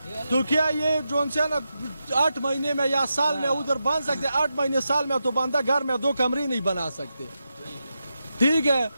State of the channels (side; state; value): both; inverted; correlation -0.88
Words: تو کیا یہ جون سے نا 8 مہینے میں یا سال میں ادھر بن سکتے؟ 8 مہینے سال میں تو بندہ گھر میں 2 کمرے نہیں بنا سکتے. ٹھیک ہے